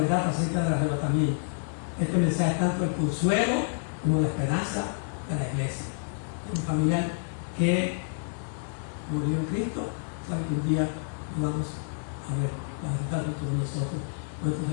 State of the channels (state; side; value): silent; right; digital silence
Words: acerca del arrebatamiento. Este mensaje es tanto el consuelo como la esperanza de la iglesia. Un familiar que murió en Cristo, sabe que un día lo vamos a ver, va a estar junto con nosotros. Cuando